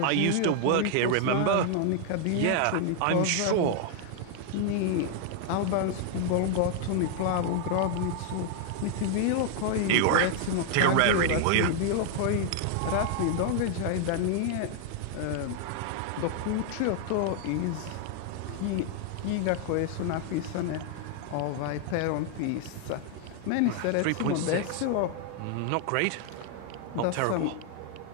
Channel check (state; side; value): different; both; correlation 0.00